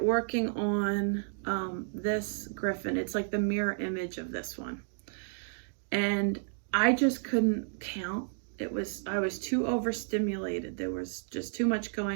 working on this griffin. It's like the mirror image of this one, and I just couldn't count. I was too overstimulated. There was just too much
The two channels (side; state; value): left; silent; digital silence